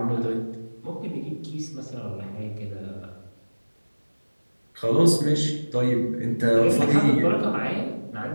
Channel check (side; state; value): both; inverted; correlation -1.00